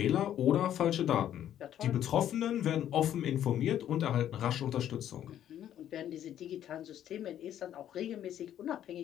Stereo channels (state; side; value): quieter; right; 10.9 dB